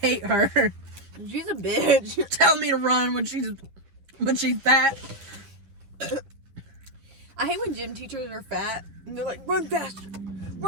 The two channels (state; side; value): late; left; 10 ms